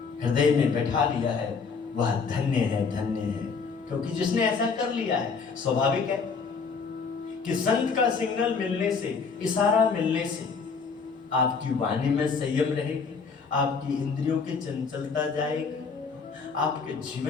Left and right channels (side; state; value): right; quieter; 5.2 dB